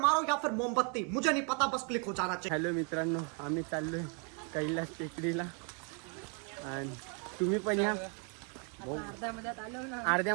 या फिर मोमबत्ती, मुझे नहीं पता, बस क्लिक हो जाना चाहिए। हॅलो मित्रांनो, आम्ही चाललोय कैलास टेकडीला आणि तुम्ही पण या. अर्ध्या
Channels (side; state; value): left; quieter; 37.7 dB